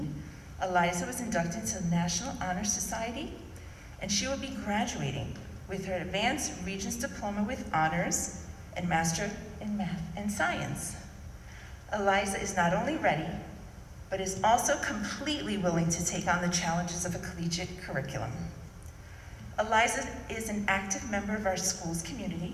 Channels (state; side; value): identical; both; correlation 1.00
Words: Eliza was inducted into the National Honor Society, and she will be graduating with her Advanced Regents Diploma with Honors and Master in Math and Science. Eliza is not only ready, but is also completely willing to take on the challenges of a collegiate curriculum. Eliza is an active member of our school's